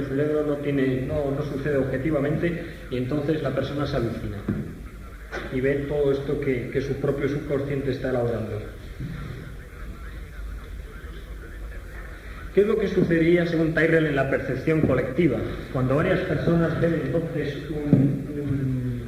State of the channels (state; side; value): identical; both; correlation 1.00